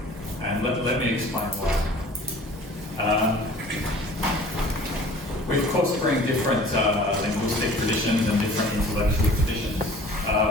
And let me explain why. We of course bring different linguistic traditions and different intellectual traditions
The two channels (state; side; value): normal; both; correlation 0.47